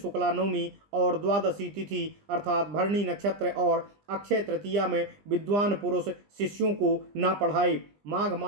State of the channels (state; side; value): late; left; 20 ms